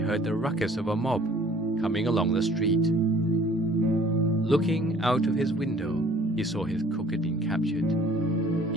the ruckus of a mob coming along the street. Looking out of his window, he saw his cook had been captured.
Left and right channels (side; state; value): both; normal; correlation 0.54